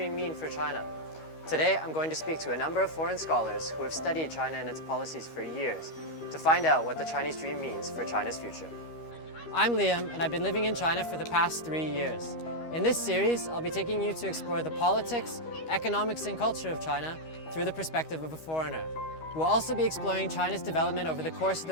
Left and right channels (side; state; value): right; late; 13 ms